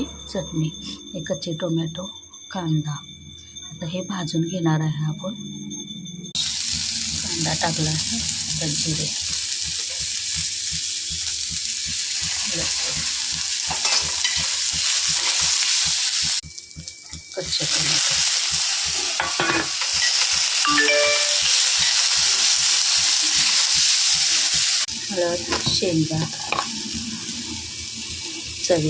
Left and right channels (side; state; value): both; identical; correlation 1.00